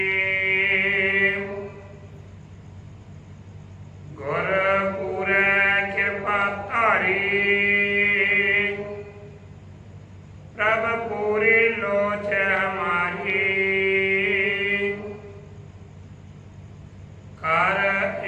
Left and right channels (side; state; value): both; identical; correlation 1.00